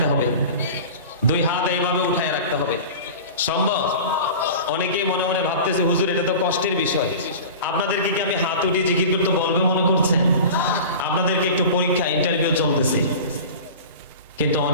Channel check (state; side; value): inverted; both; correlation -0.34